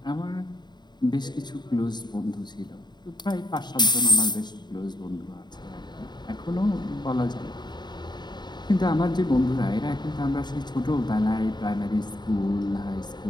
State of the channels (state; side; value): late; right; 0.21 ms